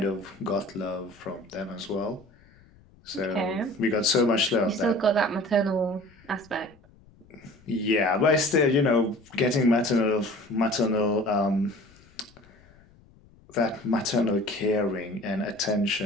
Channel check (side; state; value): left; noise; rumble, 27 dB below the sound